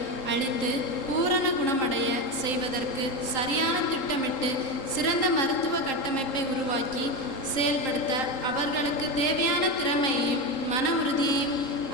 அளித்து பூரண குணமடைய செய்வதற்கு சரியான திட்டமிட்டு சிறந்த மருத்துவ கட்டமைப்பை உருவாக்கி செயல்படுத்த அவர்களுக்கு தேவையான திறமையையும் மன உறுதியையும்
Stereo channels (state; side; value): late; right; 3.8 ms